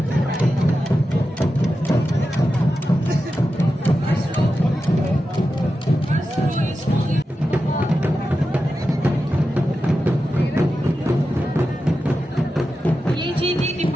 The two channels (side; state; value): both; normal; correlation 0.91